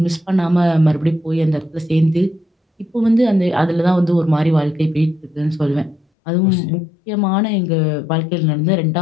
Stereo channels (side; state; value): right; drops out; at 6.0 s